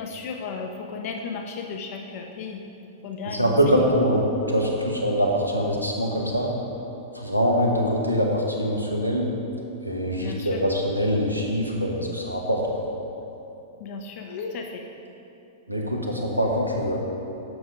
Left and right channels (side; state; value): both; inverted; correlation -0.45